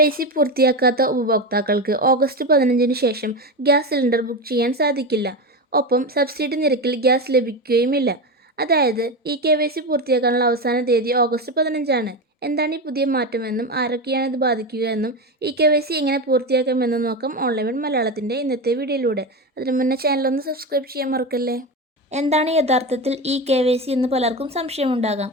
പൂർത്തിയാക്കാത്ത ഉപഭോക്താക്കൾക്ക് ഓഗസ്റ്റ് 15-ന് ശേഷം ഗ്യാസ് സിലിണ്ടർ ബുക്ക് ചെയ്യാൻ സാധിക്കില്ല. ഒപ്പം സബ്സിഡി നിരക്കിൽ ഗ്യാസ് ലഭിക്കുകയുമില്ല. അതായത് KYC പൂർത്തിയാക്കാനുള്ള അവസാന തീയതി ഓഗസ്റ്റ് 15-ആണ്. എന്താണ് ഈ പുതിയ മാറ്റമെന്നും ആരൊക്കെയാണ് ഇത് ബാധിക്കുക എന്നും KYC എങ്ങനെ പൂർത്തിയാക്കാമെന്നും നോക്കാം ഓൺലൈൻ മലയാളത്തിൻ്റെ ഇന്നത്തെ വീഡിയോയിലൂടെ. അതിനു മുന്നേ ചാനലൊന്ന് സബ്സ്ക്രൈബ് ചെയ്യാൻ മറക്കല്ലേ. എന്താണ് യഥാർത്ഥത്തിൽ KYC എന്ന് പലർക്കും സംശയമുണ്ടാകാം.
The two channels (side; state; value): both; normal; correlation 0.19